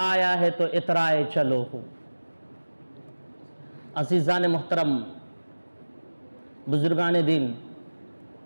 آیا ہے تو اترائے چلو ہو. عزیزان محترم، بزرگان دین،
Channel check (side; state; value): both; inverted; correlation -1.00